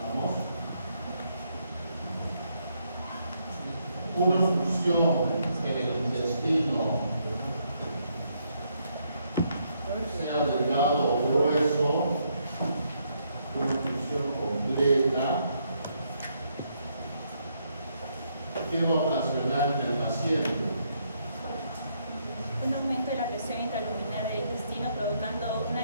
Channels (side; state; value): both; inverted; correlation -0.75